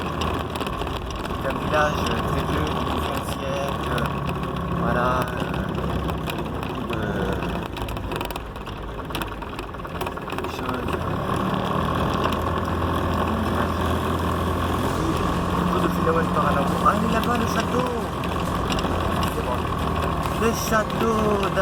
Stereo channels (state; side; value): identical; both; correlation 1.00